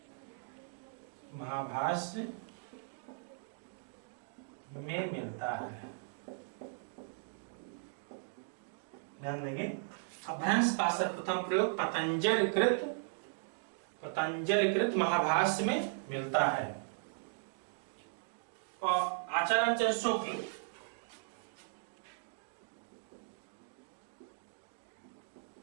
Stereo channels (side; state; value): left; silent; digital silence